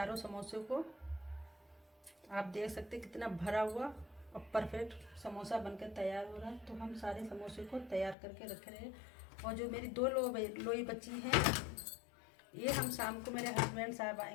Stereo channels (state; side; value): drops out; right; at 8.2 s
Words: समोसे को, आप देख सकते हैं कितना भरा हुआ और परफेक्ट समोसा बनकर तैयार हो रहा है। तो हम सारे समोसे को तैयार करके रख रहे हैं। और जो मेरी 2 लोई बची हैं, ये हम शाम को मेरे हस्बैंड साहब